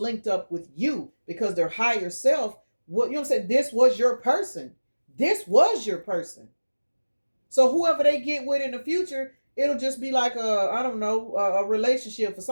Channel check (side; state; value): both; inverted; correlation -1.00